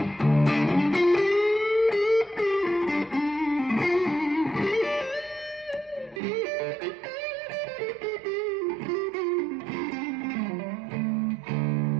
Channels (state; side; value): drops out; left; at 6.2 s